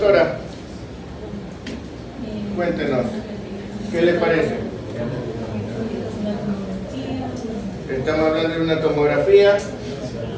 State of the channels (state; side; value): identical; both; correlation 1.00